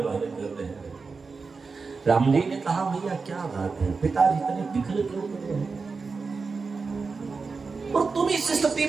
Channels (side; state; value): left; quieter; 4.6 dB